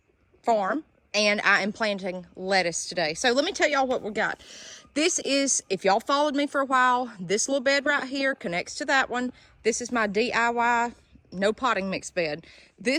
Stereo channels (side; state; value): both; identical; correlation 1.00